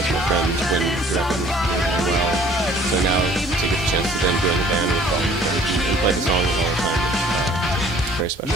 my friends when the record was doing well. So now to get the chance to then join the band with all the friends and play the songs all the time, it's very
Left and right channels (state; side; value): normal; both; correlation 0.55